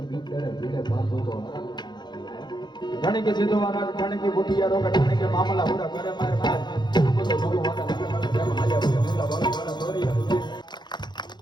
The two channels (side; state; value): right; late; 0.21 ms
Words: बात हो तो ठाणे के सीधो वाला ठाणे की बुटिया रोका ठाणे के मामला पूरा करे मारे मार हमको तो भगवान का जब हाल्या हुआ मुला वाला थोड़ी